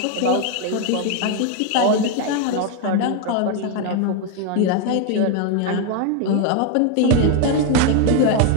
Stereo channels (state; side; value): different; both; correlation 0.01